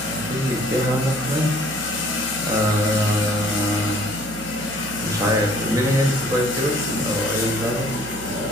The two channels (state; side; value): noise; right; hum, 15 dB below the sound